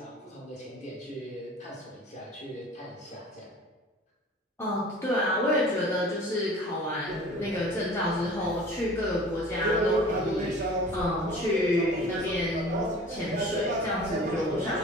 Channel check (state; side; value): normal; both; correlation 0.44